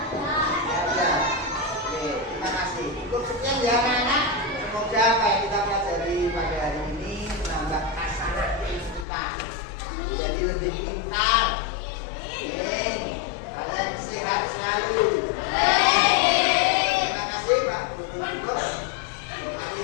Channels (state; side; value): drops out; right; at 9.1 s